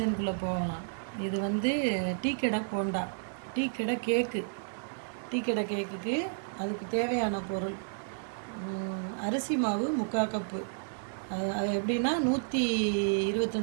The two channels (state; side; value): silent; left; digital silence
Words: போகலாம். இது வந்து டீ கடை போண்டா, டீ கடை கேக்கு. டீ கடை கேக்குக்கு அதுக்கு தேவையான பொருள் அரிசி மாவு 3/4 கப்பு. அது எப்படின்னா